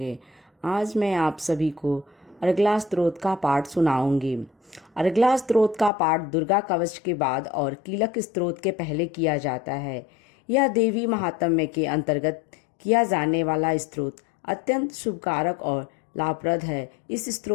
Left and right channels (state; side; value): drops out; right; at 5.9 s